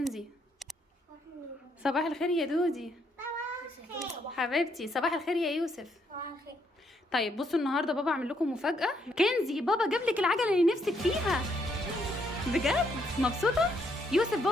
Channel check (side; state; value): both; normal; correlation 0.73